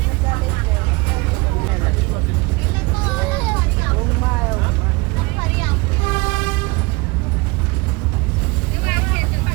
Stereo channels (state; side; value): quieter; left; 24.4 dB